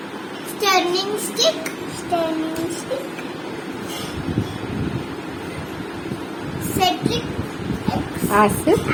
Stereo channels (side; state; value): both; identical; correlation 1.00